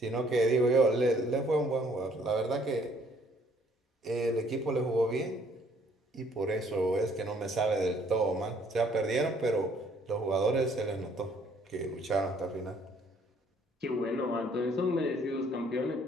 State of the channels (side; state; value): both; normal; correlation 0.62